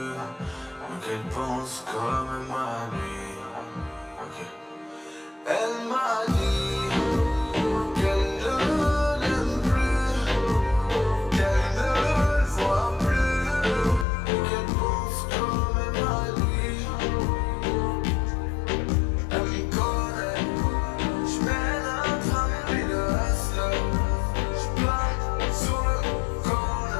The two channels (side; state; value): right; drops out; at 14.1 s